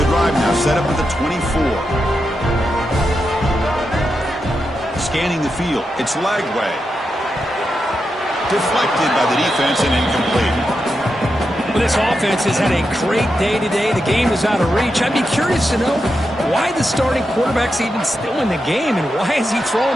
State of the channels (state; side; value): normal; both; correlation 0.87